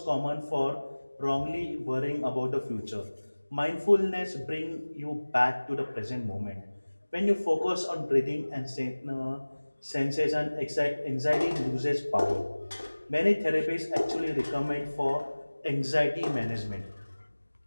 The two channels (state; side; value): inverted; both; correlation -1.00